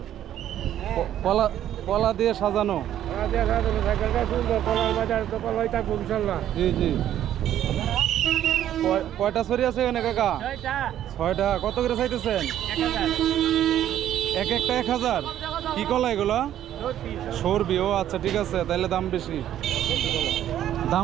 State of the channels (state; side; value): quieter; left; 11.4 dB